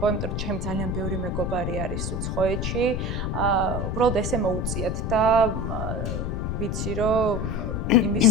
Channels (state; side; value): noise; left; rumble, 1 dB below the sound